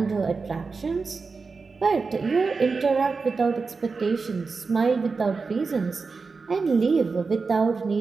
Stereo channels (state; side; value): quieter; left; 4.5 dB